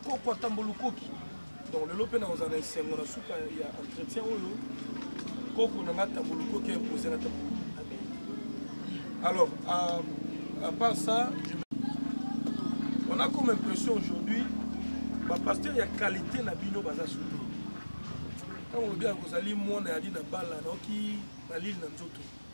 tambulukoki. Donc le lopé dans un essai, on a souka il y a entretien au coco n'a pas tambulukoki imposé la tambulukoki. Alors à part ça, on a comme impression aujourd'hui, le pasteur il y a qualité na bino baza surtout. Quand on dit que Zali Mouana a dit na bala na qui na l'île na Nzoto.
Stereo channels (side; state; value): both; inverted; correlation -1.00